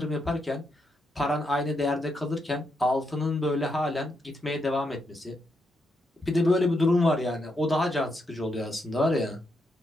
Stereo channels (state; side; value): normal; both; correlation 0.81